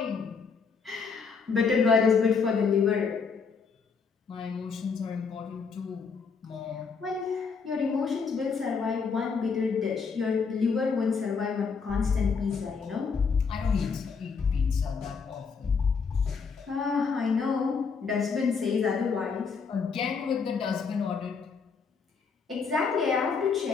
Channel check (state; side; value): quieter; right; 5.4 dB